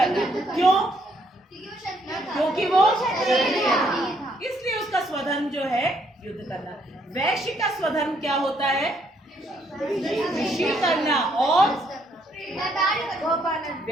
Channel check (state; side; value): normal; both; correlation 0.70